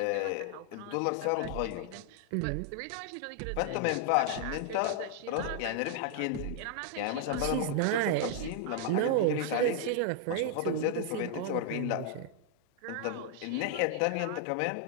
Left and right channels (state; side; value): different; both; correlation 0.00